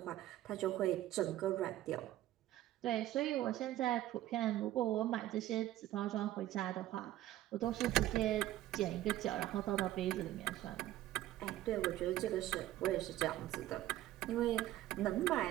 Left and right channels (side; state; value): left; quieter; 14.3 dB